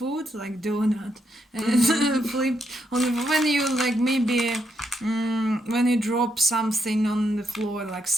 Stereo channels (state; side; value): normal; both; correlation 0.79